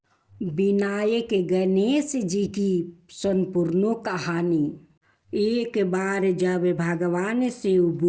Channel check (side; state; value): both; identical; correlation 1.00